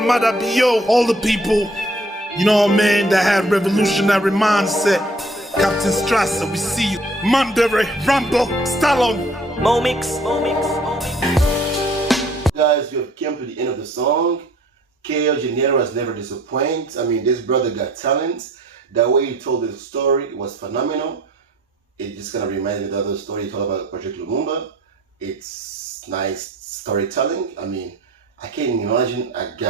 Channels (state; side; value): normal; both; correlation 0.57